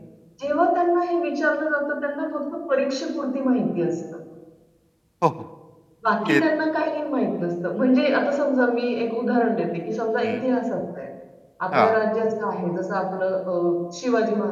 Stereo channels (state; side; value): identical; both; correlation 1.00